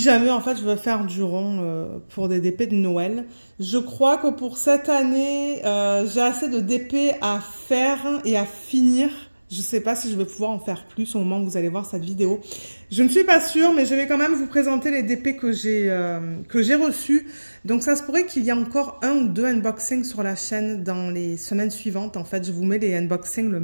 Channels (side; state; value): both; inverted; correlation -1.00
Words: jamais, en fait, je veux faire du rond pour des DP de Noël. Je crois que pour cette année, j'ai assez de DP à faire et à finir. Je ne sais pas si je vais pouvoir en faire plus au moment où vous allez voir cette vidéo. Je ne suis pas sûre, mais je vais quand même vous présenter les DP que j'ai reçus. Donc, ça se pourrait qu'il y ait encore un ou deux unboxings sur la chaîne dans les semaines suivantes. En fait, je vous mets les unboxings le